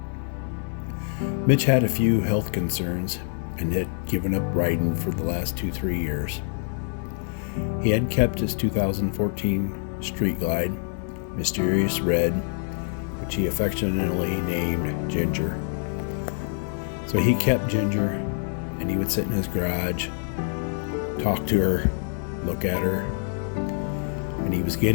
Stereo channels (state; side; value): silent; right; 61 dB below the other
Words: Mitch had a few health concerns and had given up riding for the last 2-3 years. He had kept his 2014 Street Glide, Mysterious Red, which he affectionately named Ginger. So he kept Ginger, and he would sit in his garage, talk to her, look at her, and he was